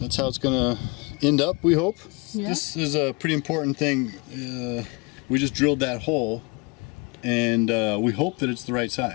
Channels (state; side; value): quieter; right; 28.7 dB